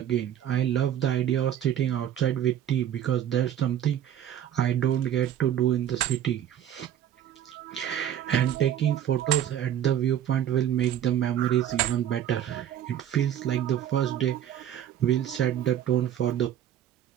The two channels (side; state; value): left; quieter; 10.6 dB